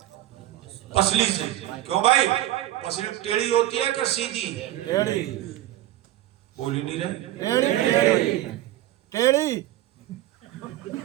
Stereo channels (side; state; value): left; quieter; 14.7 dB